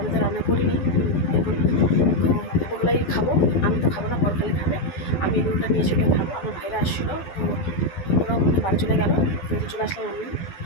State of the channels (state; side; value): late; right; 12 ms